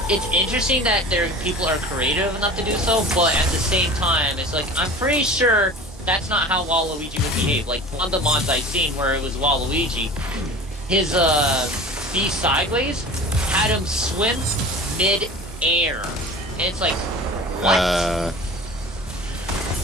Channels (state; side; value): normal; both; correlation 0.38